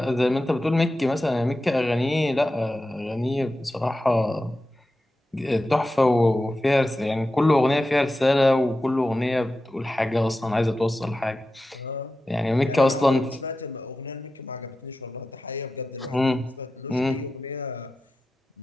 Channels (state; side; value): normal; both; correlation 0.92